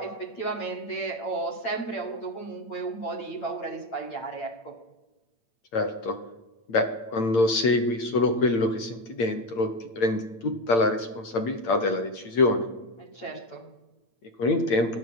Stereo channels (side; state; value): right; late; 8.8 ms